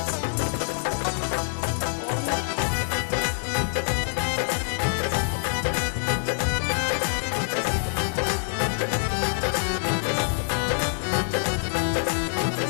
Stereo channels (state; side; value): silent; right; 60 dB below the other